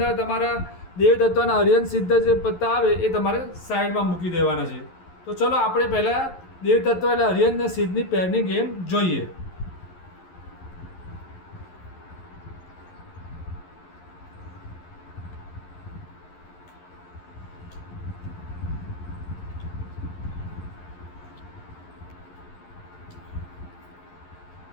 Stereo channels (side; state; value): right; late; 11 ms